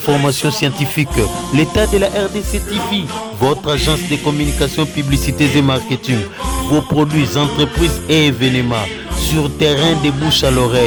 scientifiques. L'état de la RDC TV, votre agence de communication, publicité et marketing. Vos produits, entreprises et événements. Sur terrain de bouche à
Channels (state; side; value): identical; both; correlation 1.00